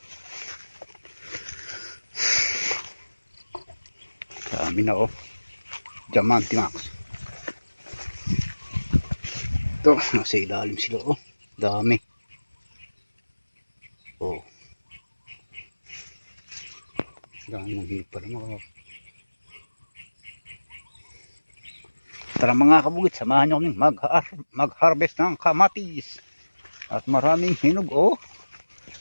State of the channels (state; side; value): inverted; both; correlation -1.00